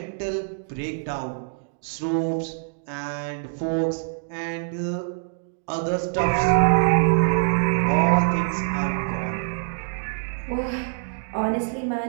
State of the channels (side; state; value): left; silent; digital silence